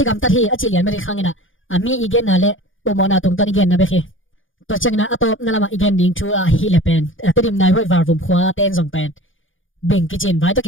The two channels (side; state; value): right; late; 0.58 ms